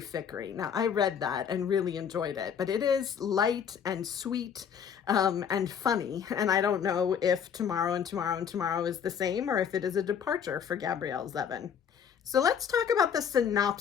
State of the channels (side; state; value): right; quieter; 7.7 dB